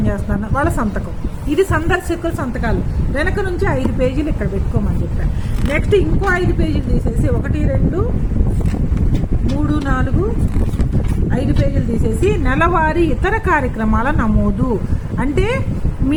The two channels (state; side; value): identical; both; correlation 1.00